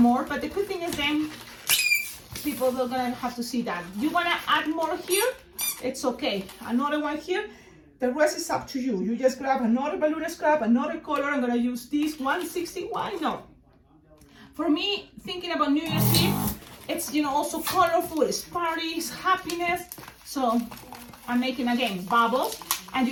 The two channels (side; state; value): both; identical; correlation 1.00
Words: but the good thing is then people are gonna have to see that. You want to add more here, it's okay. Another one here, the rest is up to you. You just grab another balloon scrap, another color. I'm gonna use this 160. Why not? For me, thinking about New Year's Eve, it's, you know, also colorful, it's parties, happiness. So I'm making again bubbles, and